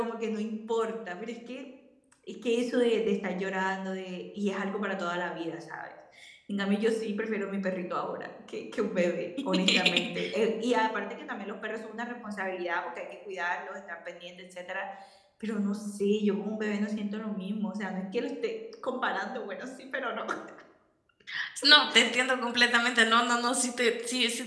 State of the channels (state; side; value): identical; both; correlation 1.00